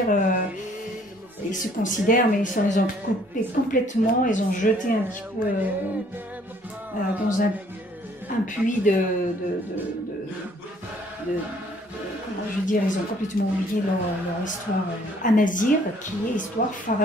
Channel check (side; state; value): both; normal; correlation 0.61